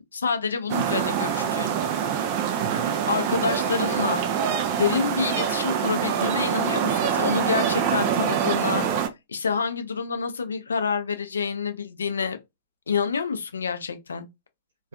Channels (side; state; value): both; inverted; correlation -0.36